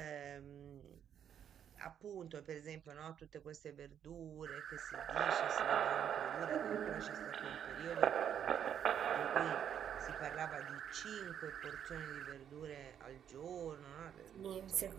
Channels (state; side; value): quieter; left; 9.0 dB